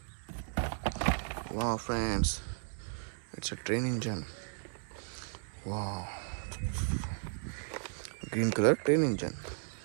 Wow, friends. It's a train engine. Wow. Green color train engine.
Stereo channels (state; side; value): silent; left; 54 dB below the other